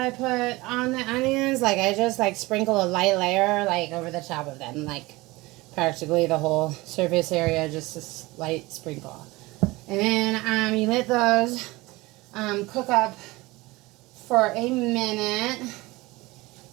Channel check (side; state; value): left; quieter; 21.4 dB